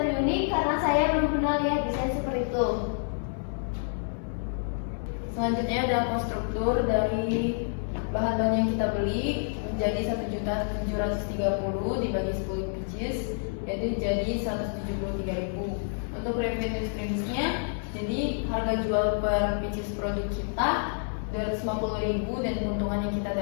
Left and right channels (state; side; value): silent; right; 59 dB below the other